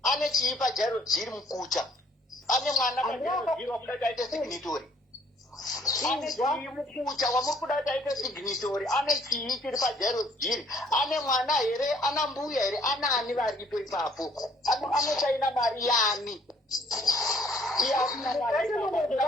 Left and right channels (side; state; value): both; normal; correlation 0.63